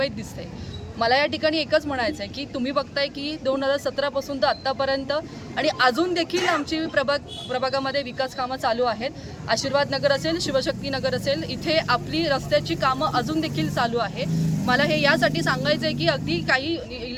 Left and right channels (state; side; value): identical; both; correlation 1.00